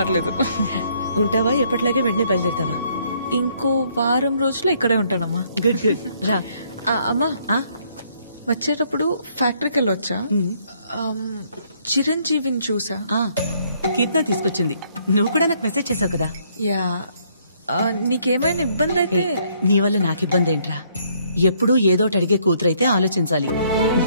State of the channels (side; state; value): both; inverted; correlation -0.68